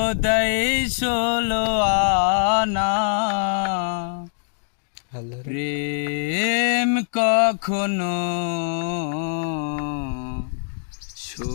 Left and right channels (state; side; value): silent; right; digital silence